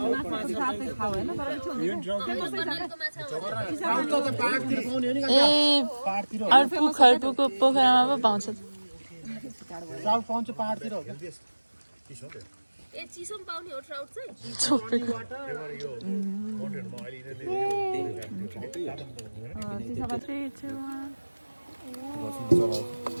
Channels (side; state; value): both; inverted; correlation -1.00